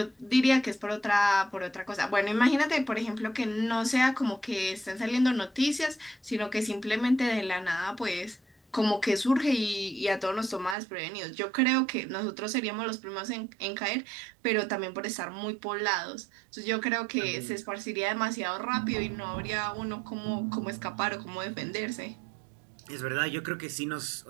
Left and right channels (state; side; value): drops out; left; at 10.8 s